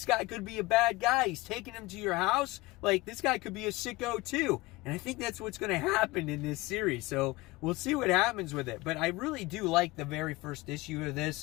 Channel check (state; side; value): quieter; right; 21.2 dB